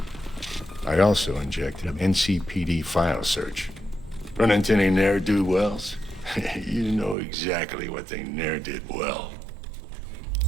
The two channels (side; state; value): left; drops out; at 7.2 s